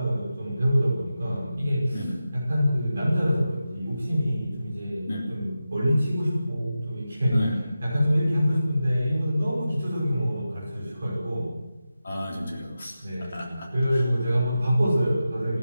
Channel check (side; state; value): both; inverted; correlation -0.92